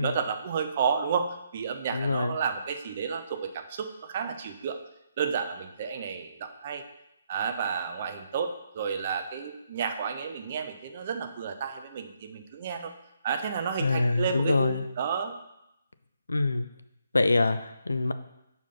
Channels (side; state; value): both; inverted; correlation -0.76